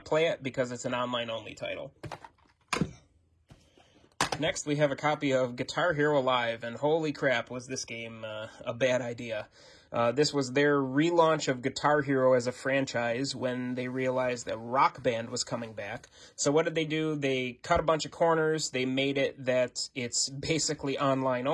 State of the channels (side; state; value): both; identical; correlation 1.00